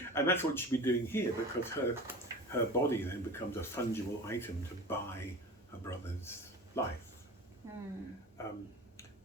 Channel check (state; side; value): normal; both; correlation 0.34